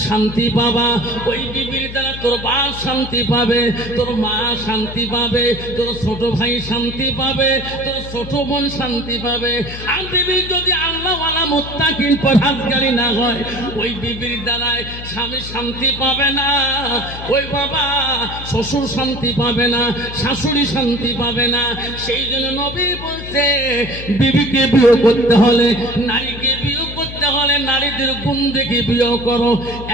শান্তি পাবা, ওই বিবির দ্বারা তোর বাপ শান্তি পাবে, তোর মা শান্তি পাবে, তোর ছোট ভাই শান্তি পাবে, তোর ছোট বোন শান্তি পাবে। আর বিবি যদি আল্লাহওয়ালা মুত্তাকিন পরহেজগারি না হয়, ওই বিবির দ্বারায় স্বামী শান্তি পাবে না, ওই বাবা শ্বশুর শান্তি পাবে না, শাশুড়ি শান্তি পাবে না। সেই জন্য নবী বলছে বিবিকে বিয়ে করতে হলে, নারীকে বিয়ে করতে হলে নারীদের গুণ দেখে বিয়ে করো।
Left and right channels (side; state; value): left; noise; hum, 11 dB below the sound